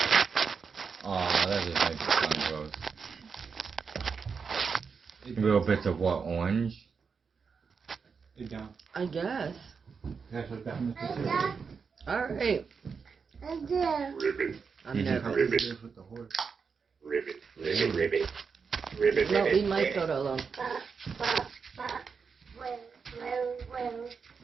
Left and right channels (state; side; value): quieter; left; 5.6 dB